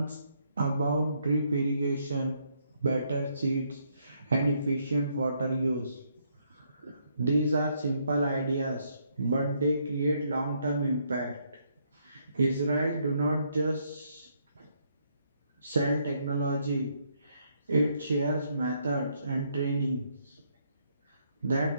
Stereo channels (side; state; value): both; inverted; correlation -0.73